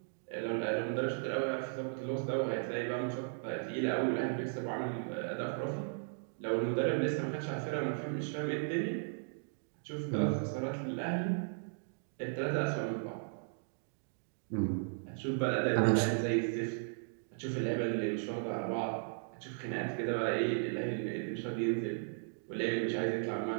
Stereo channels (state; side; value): silent; left; digital silence